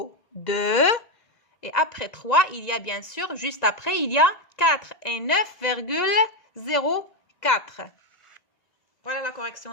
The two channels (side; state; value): right; late; 1.9 ms